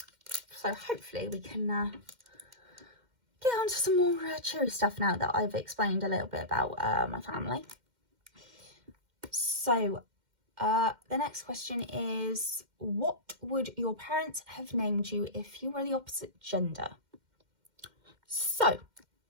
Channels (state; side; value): late; left; 2.1 ms